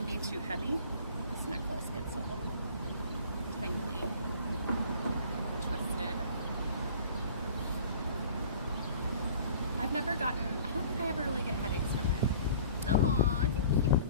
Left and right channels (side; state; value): both; inverted; correlation -0.48